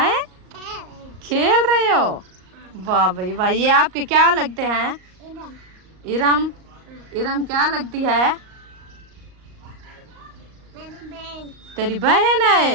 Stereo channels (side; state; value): left; late; 38 ms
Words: खेल रहे हो? वाह भाई वाह, ये आपके क्या लगते हैं? इरम। इरम क्या लगती है? तेरी बहन